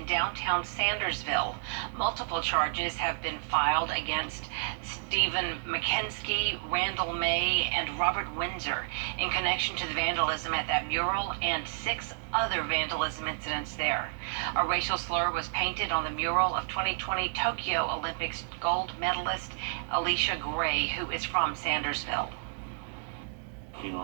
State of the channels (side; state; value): left; silent; digital silence